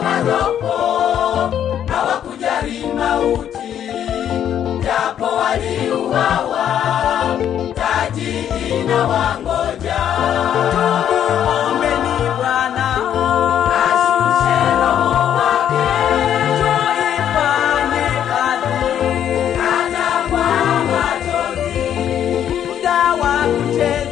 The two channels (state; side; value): quieter; right; 9.9 dB